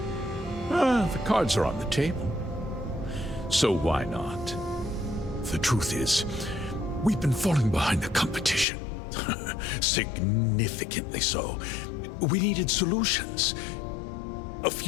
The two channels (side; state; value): right; drops out; at 8.7 s